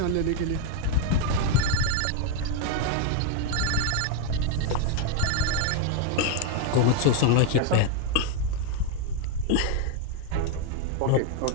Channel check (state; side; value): different; both; correlation 0.01